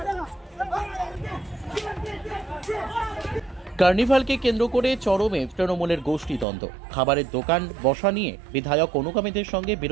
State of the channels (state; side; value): drops out; left; at 6.5 s